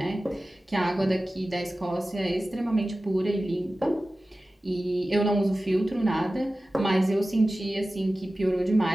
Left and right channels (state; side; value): normal; both; correlation 0.96